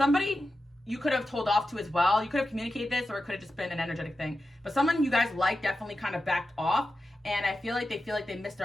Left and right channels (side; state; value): both; normal; correlation 0.91